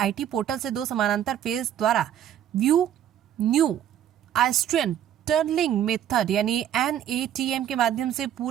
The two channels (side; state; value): left; quieter; 10.5 dB